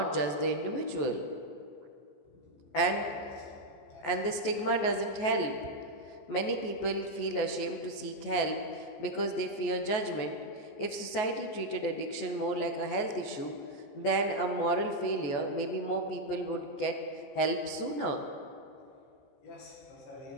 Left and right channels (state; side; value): late; right; 14 ms